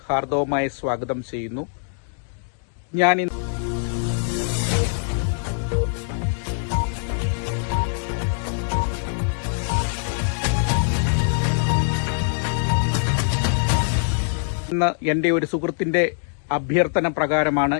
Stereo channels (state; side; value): silent; right; digital silence